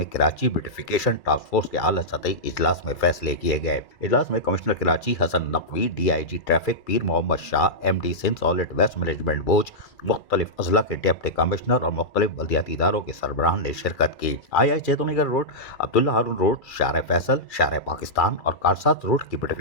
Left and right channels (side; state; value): right; late; 2.3 ms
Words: کراچی بیوٹیفیکیشن ٹاسک فورس کے اعلیٰ سطحی اجلاس میں فیصلے کیے گئے۔ اجلاس میں commissioner Karachi Hasan Naqvi, D I G traffic Pir Muhammad Shah, M D Sindh solid waste management بوج، مختلف اضلاع کے ڈپٹی کمشنر اور مختلف بلدیاتی اداروں کے سربراہان نے شرکت کی۔ آئی چیتونی گڑھ روڈ، عبداللہ ہارون روڈ، شارع فیصل، شارع پاکستان اور کارسات روڈ کی